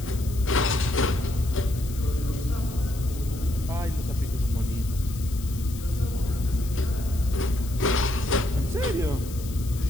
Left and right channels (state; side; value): noise; left; hiss, 16 dB below the sound